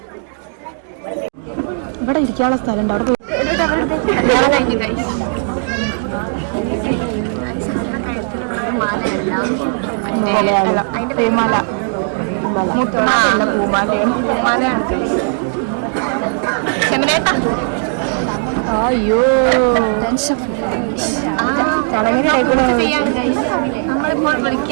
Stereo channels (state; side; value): silent; left; 56 dB below the other